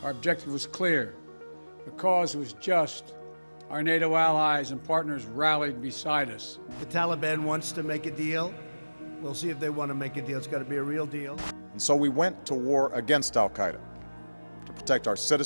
Our objective was clear. The cause was just. Our NATO allies and partners rallied beside us. The Taliban wants to make a deal. We'll see if they want to make a deal. It's got to be a real deal. And so we went to war against Al-Qaeda to protect our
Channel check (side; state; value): both; inverted; correlation -1.00